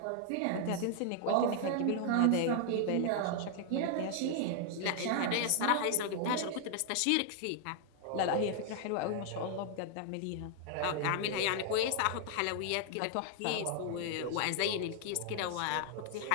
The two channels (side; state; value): both; different; correlation 0.00